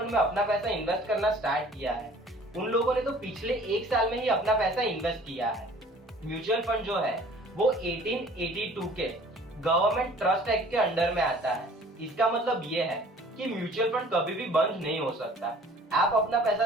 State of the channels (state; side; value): normal; both; correlation 0.51